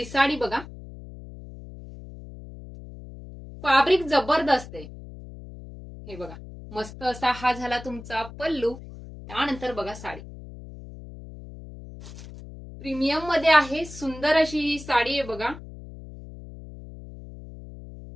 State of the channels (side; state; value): left; noise; hum, 15 dB below the sound